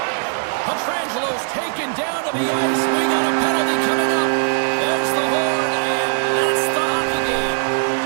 Petrangelo's taken down to the ice. We got a penalty coming up. There's the horn, and that's the hockey game.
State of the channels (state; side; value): silent; left; 66 dB below the other